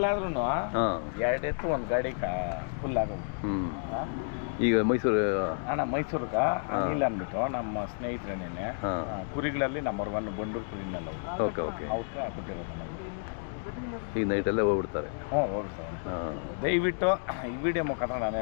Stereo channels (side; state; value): right; silent; digital silence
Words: ಎರಡು ಎತ್ತು ಒಂದು ಗಾಡಿ ಫುಲ್ ಆಗೋದು. ಈಗ ಮೈಸೂರು ಅಣ್ಣ ಮೈಸೂರಿಗೆ ಅನಿಲ್ ಅಂದ್ಬಿಟ್ಟು ನಮ್ಮ ಸ್ನೇಹಿತರೇನೇನೆ ಕುರಿಗಳಲ್ಲಿ ನಂಬರ್ 1 ಬಂಡೂರು ಕುರಿನೆಲ್ಲ ಓಕೆ ಓಕೆ ಅವ್ರಿಗೆ ಕೊಟ್ಟಿರೋದು ನಮಗೆ. ಈಗ ನೈಟಲ್ಲೇ ಹೋಗ್ಬಿಡ್ತಾರೆ. ಹೋಗ್ಬಿಡ್ತಾರೆ. ದಯವಿಟ್ಟು ಈ ವಿಡಿಯೋ ಮುಖಾಂತರ ನಾನು